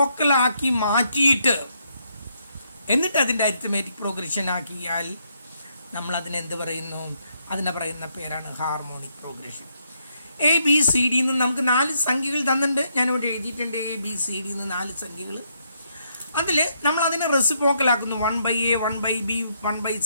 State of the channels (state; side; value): inverted; both; correlation -0.75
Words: മാറ്റിയിട്ട് എന്നിട്ട് അതിൻ്റെ അരിത്തമാറ്റിക് പ്രോഗ്രഷൻ ആക്കിയാൽ നമ്മൾ അതിനെന്ത് പറയുന്നു? അതിനെ പറയുന്ന പേരാണ് ഹാർമോണിക് പ്രോഗ്രഷൻ. ABCD നിന്ന് നമുക്ക് 4 സംഖ്യകൾ തന്നിട്ടുണ്ട്. ഞാനിവിടെ എഴുതിയിട്ടുണ്ട് ABCD നിന്ന് 4 സംഖ്യകൾ. അതിൽ നമ്മൾ അതിനെ റെസിപ്രോക്കലാക്കുന്നു. 1/A, 1/B,